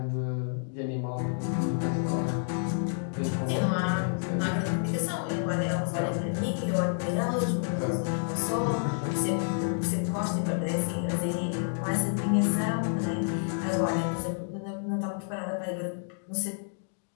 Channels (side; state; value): right; silent; digital silence